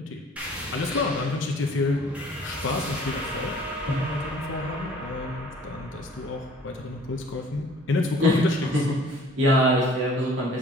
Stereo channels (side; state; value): both; normal; correlation 0.53